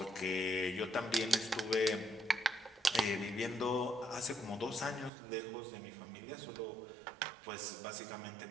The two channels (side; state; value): left; drops out; at 5.1 s